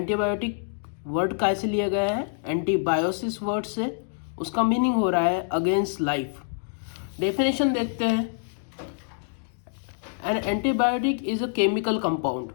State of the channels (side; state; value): right; silent; digital silence